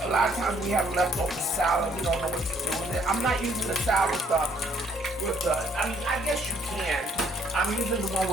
A lot of times we have leftover salad. We don't know what to do with it. I'm not using the salad stuff with the. I mean, I guess you can. I'm using the one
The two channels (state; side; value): normal; both; correlation 0.64